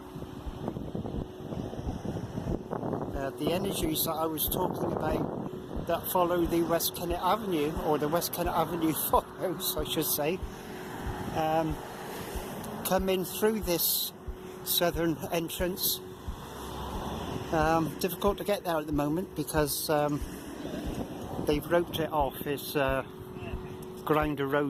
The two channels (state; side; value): identical; both; correlation 1.00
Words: The energies that I was talking about that follow the West Kennet Avenue, or the West Kennet Avenue follows, I should say, come in through this southern entrance. Difficult to get there at the moment because they've roped it off. It's ground